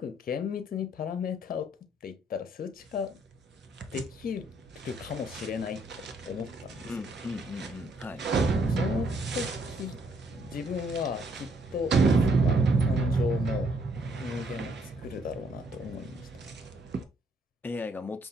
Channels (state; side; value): normal; both; correlation 0.68